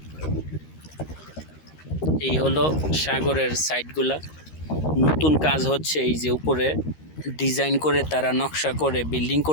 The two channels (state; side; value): late; right; 13 ms